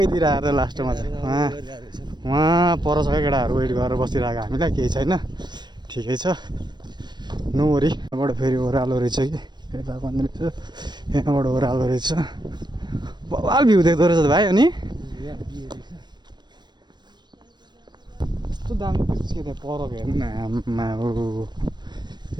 आएर लास्टमा चाहिँ वहाँ पर छ केटाहरू वेट गरेर बसिरहेको हामीलाई केही छैन ठिकै छ नोरी यहाँबाट फेरि ओह्रालो रहेछ कि यता पनि रहेछ यहाँबाट ओह्रालो रहेछ बवाल भ्यू देख्दो रहेछ भाइ अनि कस्तो दामी भ्यू के त्यहाँ परको हेर्नु न आम्मा हो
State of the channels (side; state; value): left; late; 0.21 ms